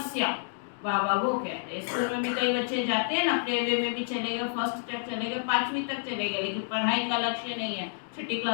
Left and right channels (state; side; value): silent; right; digital silence